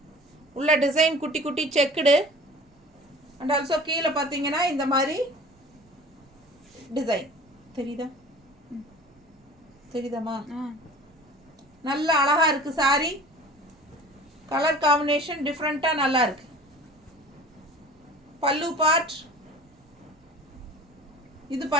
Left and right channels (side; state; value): both; normal; correlation 0.43